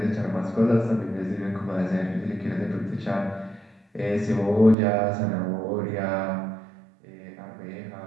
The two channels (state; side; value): drops out; left; at 4.8 s